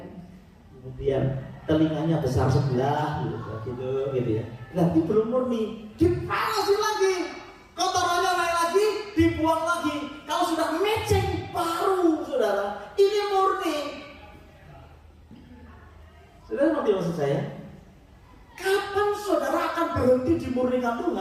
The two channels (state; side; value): identical; both; correlation 1.00